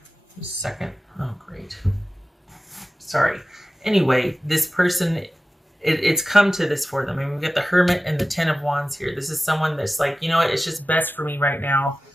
Just a second. Oh, great. Sorry. Anyway, this person, it's come to this for them. I mean, we've got the Hermit and the Ten of Wands here. This is someone that's like, you know what? It's just best for me right now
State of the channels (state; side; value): normal; both; correlation 0.95